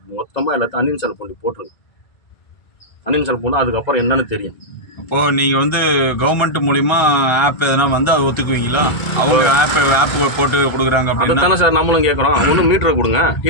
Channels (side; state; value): right; late; 1.3 ms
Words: மொத்தமாக எல்லாத்தையும் அன்இன்ஸ்டால் பண்ணி போட்டுருங்க. அன்இன்ஸ்டால் பண்ணால் அதுக்கப்புறம் என்னன்னு தெரியும். அப்போது நீங்கள் வந்து கவர்மெண்ட் மூலிமா ஆப் எதனா வந்து அதை ஒத்துக்குவீங்களா? அவங்க ஆப் போட்டு கொடுக்குறாங்க அப்படின்னு தானே சார் நம்மளும் கேட்குறோம். ஒன்று மீட்டரை கொடுங்க,